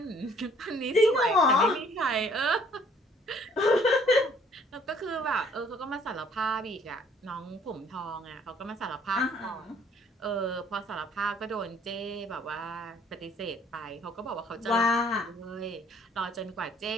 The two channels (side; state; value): both; normal; correlation 0.60